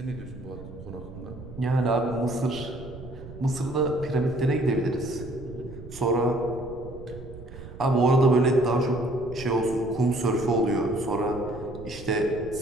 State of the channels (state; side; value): noise; right; rumble, 15 dB below the sound